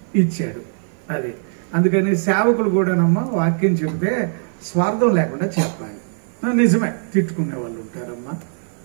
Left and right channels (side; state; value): left; silent; 57 dB below the other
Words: ఇచ్చాడు. అది అందుకని సేవకులు కూడానమ్మా వాక్యం చెబితే స్వార్థం లేకుండా చెప్పాలి. నిజమే, తిట్టుకునే వాళ్ళు ఉంటారమ్మా,